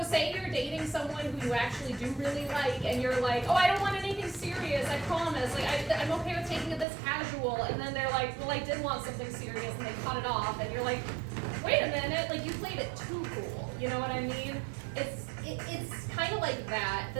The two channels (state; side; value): drops out; left; at 6.9 s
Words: say you're dating someone who you actually do really like, and you're like, oh, I don't want anything serious, I promise, like, I'm okay with taking it this casual, and then they're like, well, I did want something serious, and they cut it off, and you're like, wait a minute, like, you played it too cool, you know what I mean? It's kind of like that.